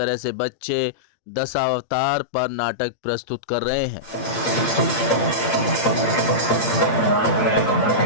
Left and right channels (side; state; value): right; late; 8.7 ms